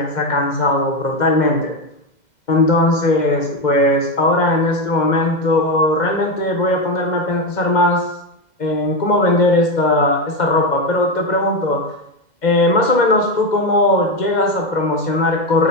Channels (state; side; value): late; right; 2.1 ms